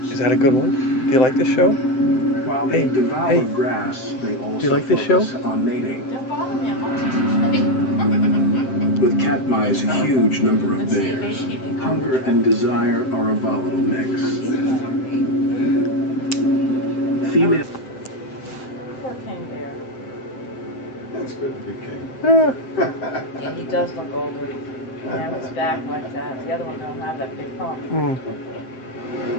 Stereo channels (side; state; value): right; late; 7.7 ms